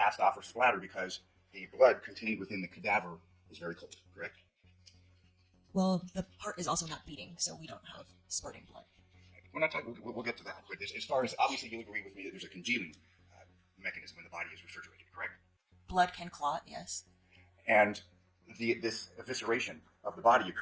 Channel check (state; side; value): identical; both; correlation 1.00